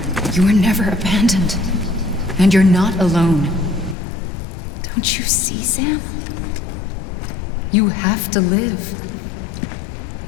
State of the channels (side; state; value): right; drops out; at 4.0 s